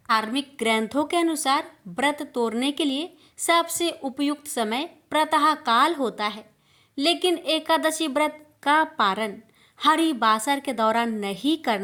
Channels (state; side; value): identical; both; correlation 1.00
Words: धार्मिक ग्रंथों के अनुसार व्रत तोड़ने के लिए सबसे उपयुक्त समय प्रातः काल होता है, लेकिन एकादशी व्रत का पारण हरिवासर के दौरान नहीं